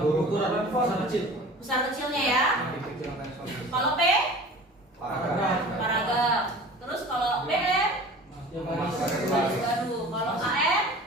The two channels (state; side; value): normal; both; correlation 0.42